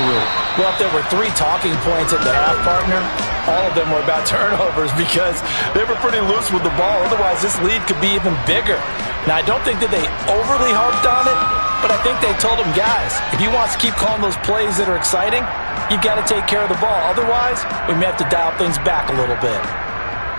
Well, if there were 3 talking points at the half, partner, all of them were about turnovers because they were pretty loose with the ball. Otherwise, this lead could be even bigger. Now, I don't think that they overly harped on it, but I think they told them, guys, if you want to keep calling those plays that are exciting, you've got to take care of the ball. Otherwise, we may have to dial things back a little bit.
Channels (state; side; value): inverted; both; correlation -1.00